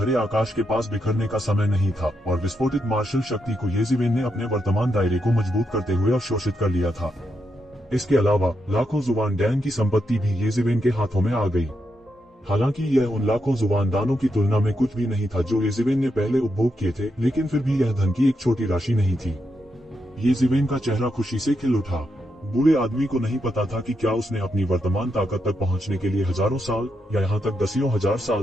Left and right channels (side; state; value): both; normal; correlation 0.83